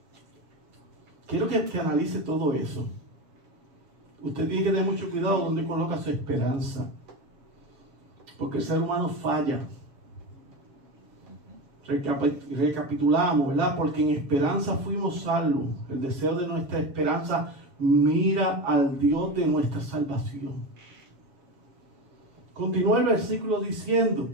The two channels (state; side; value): late; left; 7.1 ms